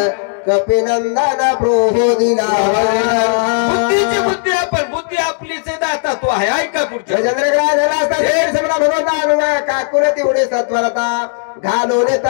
कपिनंदन प्रोदिना. बुद्धीची बुद्धी आपण बुद्धी आपलीच दाता तो आहे. ऐका पुढच्या भगवंता काकुन तेवढी सत्वरता घालून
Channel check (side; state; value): right; silent; digital silence